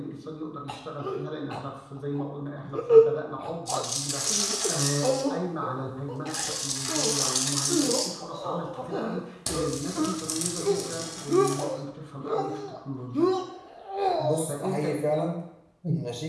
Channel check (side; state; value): both; identical; correlation 1.00